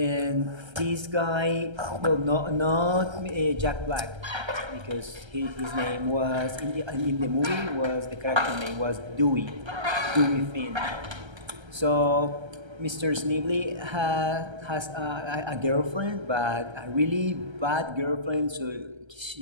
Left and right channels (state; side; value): late; left; 1.3 ms